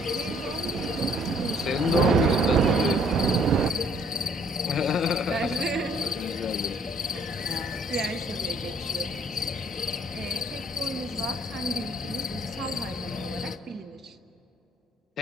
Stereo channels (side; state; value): both; normal; correlation 0.62